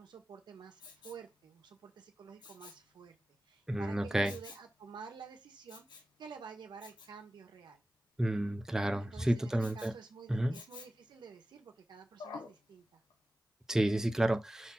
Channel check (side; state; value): both; normal; correlation 0.95